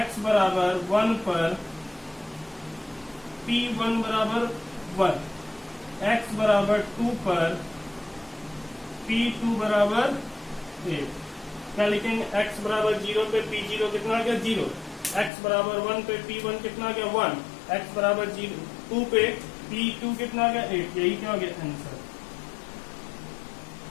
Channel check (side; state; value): right; drops out; at 15.3 s